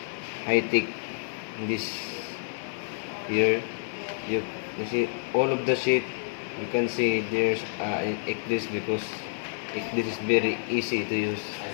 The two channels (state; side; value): silent; right; 55 dB below the other